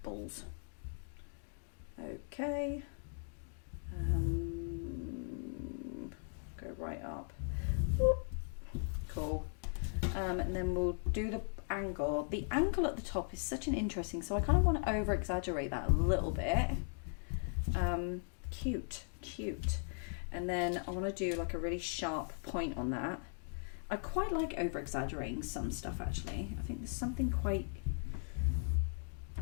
Balls. Okay. Go right up. Whoop. Cool. And then we'll do the angle. The angle at the top is such an interesting, so I kind of want to over exaggerate that a little bit. Cute. And then I want to do like a really sharp point on that. I quite like over exaggerating some stuff actually. I think there's something quite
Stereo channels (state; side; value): silent; right; 52 dB below the other